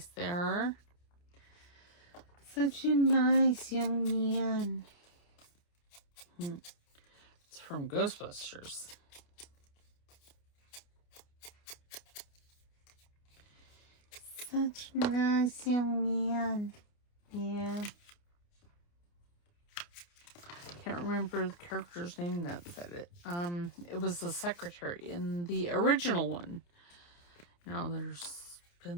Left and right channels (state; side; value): late; right; 29 ms